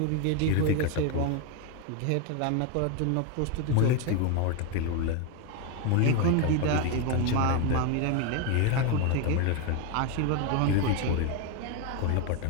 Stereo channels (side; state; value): both; different; correlation 0.02